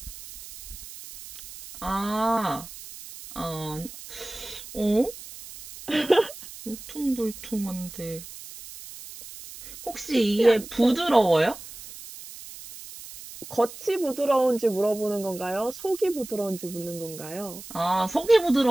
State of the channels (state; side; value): noise; right; hiss, 14 dB below the sound